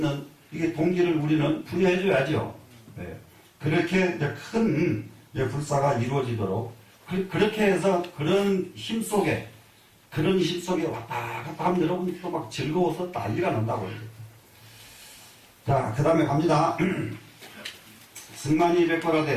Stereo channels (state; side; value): identical; both; correlation 1.00